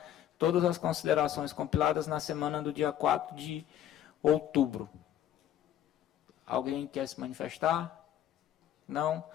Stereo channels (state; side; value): quieter; right; 11.1 dB